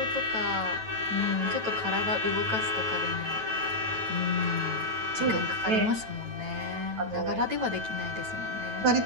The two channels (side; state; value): left; late; 9.1 ms